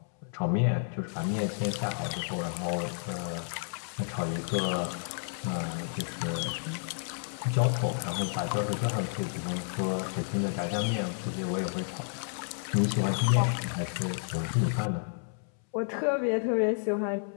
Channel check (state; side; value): silent; right; 57 dB below the other